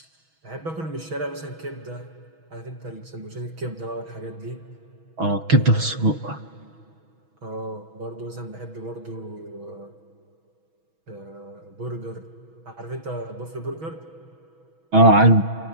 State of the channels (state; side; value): late; left; 6.2 ms